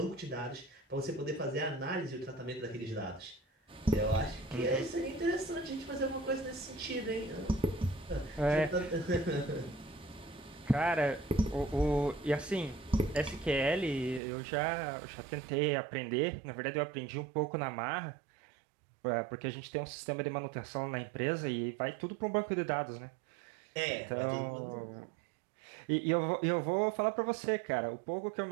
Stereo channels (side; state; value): left; drops out; at 14.2 s